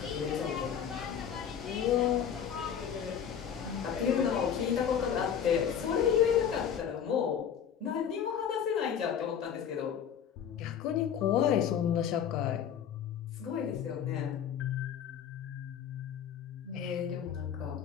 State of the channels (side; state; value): right; quieter; 8.4 dB